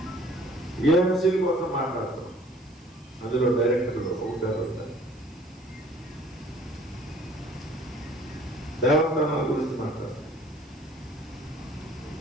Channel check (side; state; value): right; noise; hiss, 29 dB below the sound